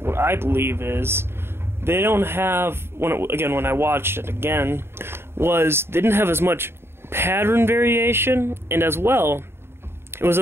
what I believe is, they don't have, when I watched it again, was they didn't have as much pattern variation, and as well, it was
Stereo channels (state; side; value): late; left; 0.12 ms